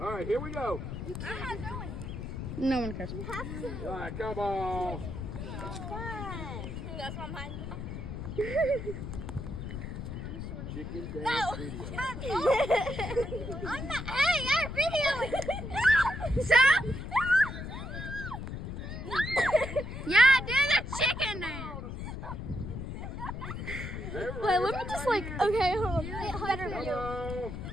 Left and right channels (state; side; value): noise; left; rumble, 7 dB below the sound